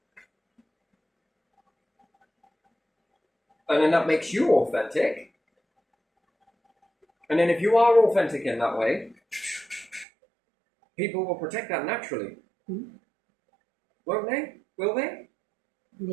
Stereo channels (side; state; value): left; drops out; at 10.1 s